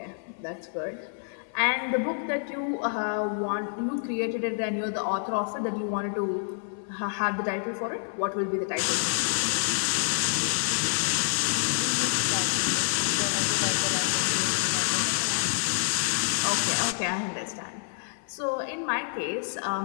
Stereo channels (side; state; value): right; silent; 56 dB below the other